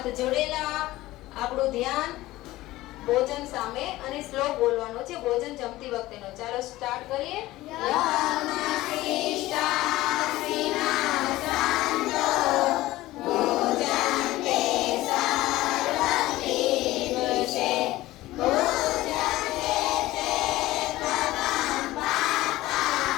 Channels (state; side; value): quieter; right; 17.2 dB